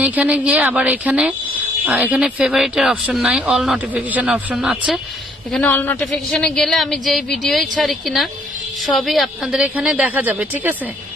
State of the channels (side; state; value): both; normal; correlation 0.65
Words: এখানে গিয়ে আবার এখানে ফেভারিটের অপশন নাই, অল নোটিফিকেশন অপশন আছে। এখানে অল নোটিফিকেশনে গেলে আমি যেই ভিডিওই ছাড়ি কিনা সবই আপনাদের এখানে দেখা যাবে, ঠিক আছে?